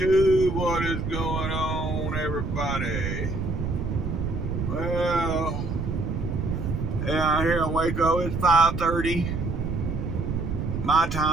What is going on, everybody? Well, yeah, here in Waco, it's 5:30 my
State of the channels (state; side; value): noise; right; rumble, 3 dB below the sound